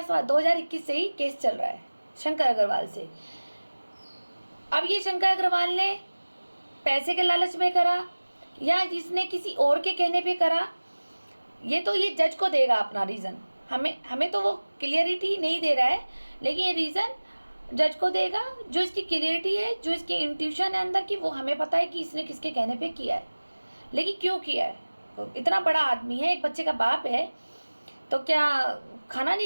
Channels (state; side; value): inverted; both; correlation -1.00